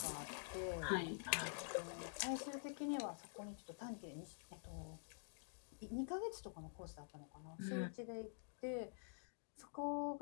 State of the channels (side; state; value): right; silent; digital silence